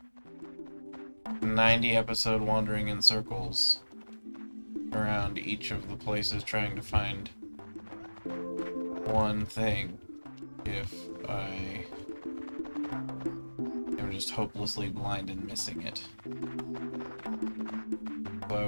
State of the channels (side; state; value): both; inverted; correlation -1.00